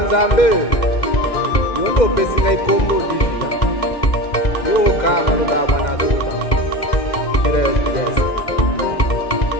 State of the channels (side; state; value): right; late; 2.1 ms